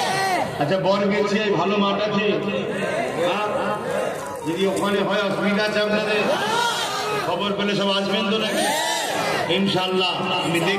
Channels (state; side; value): identical; both; correlation 1.00